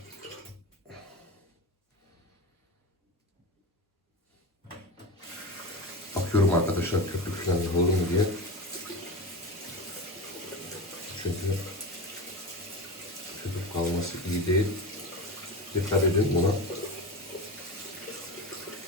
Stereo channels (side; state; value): both; normal; correlation 0.26